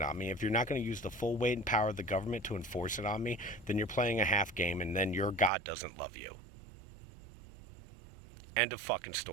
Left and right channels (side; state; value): left; drops out; at 5.5 s